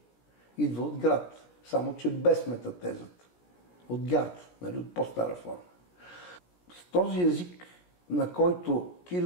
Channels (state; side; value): late; right; 17 ms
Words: идва от град, само че без метатезата. От гард, нали, от по-стара форма. С този език, на който